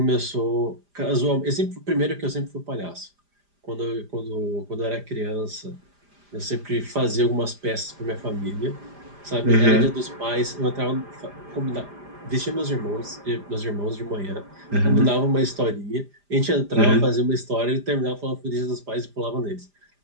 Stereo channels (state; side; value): late; left; 5.0 ms